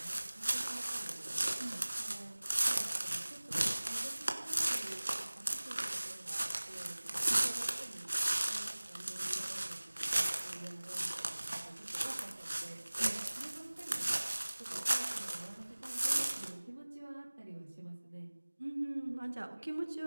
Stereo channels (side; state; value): both; inverted; correlation -1.00